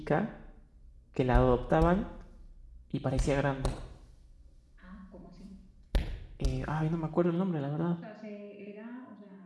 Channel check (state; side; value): identical; both; correlation 1.00